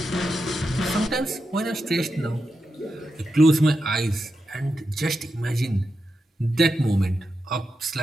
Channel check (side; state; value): both; normal; correlation 0.88